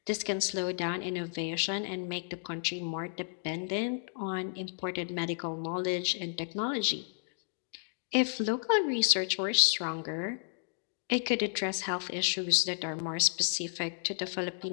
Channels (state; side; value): silent; right; digital silence